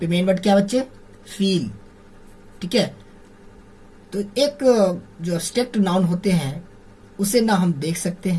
मेन वर्ड क्या बच्चे? फील। ठीक है, तो एक जो एब्स्ट्रैक्ट नाउन होते हैं उसे ना हम देख सकते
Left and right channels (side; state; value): both; identical; correlation 1.00